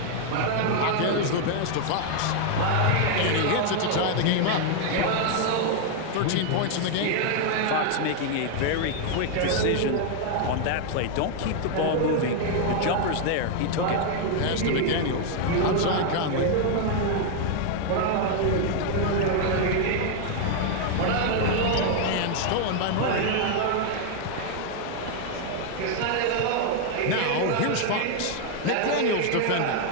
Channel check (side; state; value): both; different; correlation 0.00